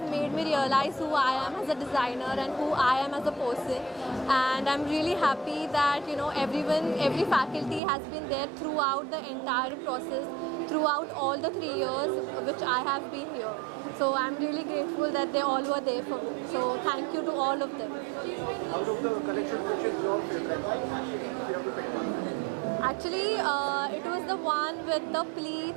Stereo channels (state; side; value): drops out; left; at 7.8 s